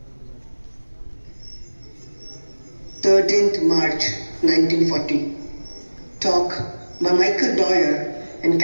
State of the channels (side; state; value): both; inverted; correlation -1.00